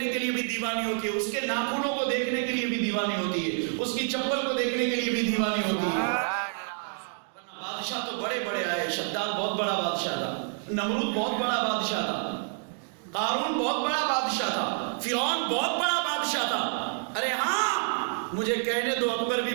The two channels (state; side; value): silent; left; 59 dB below the other